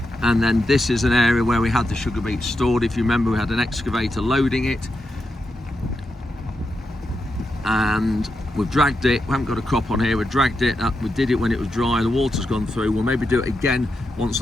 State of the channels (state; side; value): normal; both; correlation 0.86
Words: And then this is an area where we had the sugar beet stored. If you remember, we had an excavator loading it, and we've dragged it. We haven't got a crop on here. We dragged it up. We did it when it was dry. The water's gone through. We'll maybe do it again once